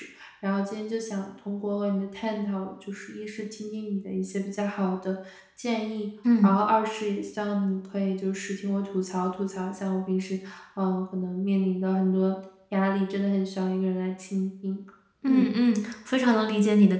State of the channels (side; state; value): both; identical; correlation 1.00